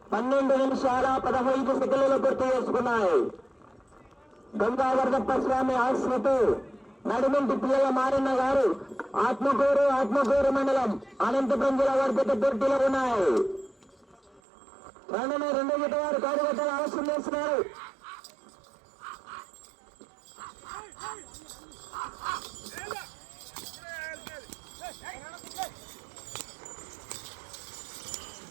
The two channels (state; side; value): drops out; left; at 14.4 s